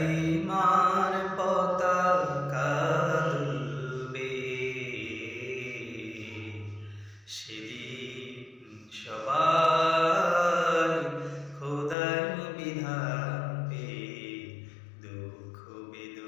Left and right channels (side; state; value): right; drops out; at 12.0 s